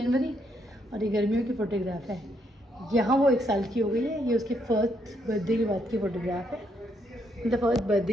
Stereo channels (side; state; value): both; normal; correlation 0.75